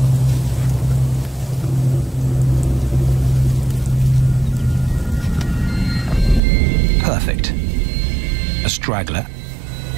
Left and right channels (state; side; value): drops out; left; at 6.4 s